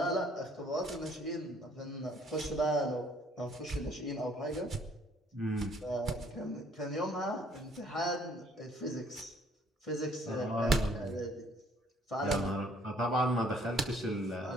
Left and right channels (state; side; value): normal; both; correlation 0.61